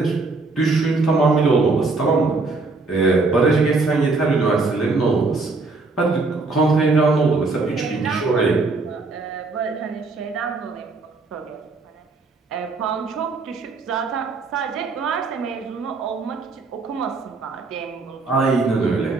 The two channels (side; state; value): left; quieter; 3.8 dB